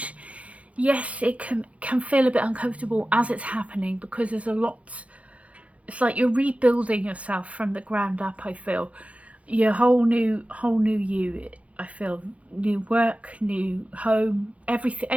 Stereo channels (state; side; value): late; left; 0.065 ms